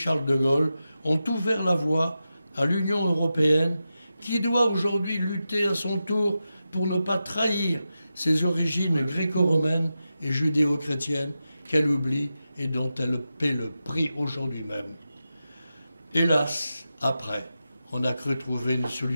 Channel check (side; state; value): both; inverted; correlation -0.91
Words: de Gaulle, ont ouvert la voie à l'Union européenne qui doit aujourd'hui lutter à son tour pour ne pas trahir ses origines gréco-romaines et judéo-chrétiennes qu'elle oublie et dont elle paie le prix aujourd'hui même. Hélas, après, on a cru trouver une